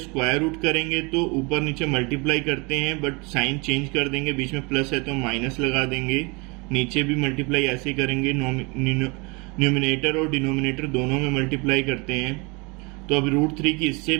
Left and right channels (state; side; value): quieter; left; 28.8 dB